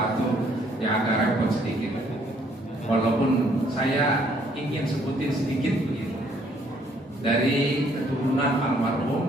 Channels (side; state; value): both; normal; correlation 0.65